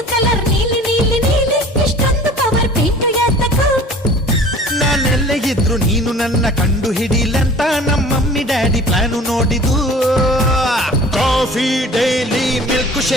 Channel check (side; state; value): both; normal; correlation 0.45